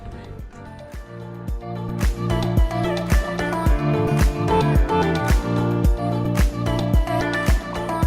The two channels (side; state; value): both; identical; correlation 1.00